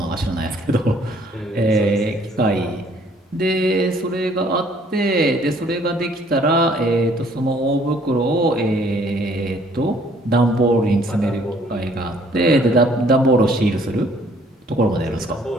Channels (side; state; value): both; normal; correlation 0.61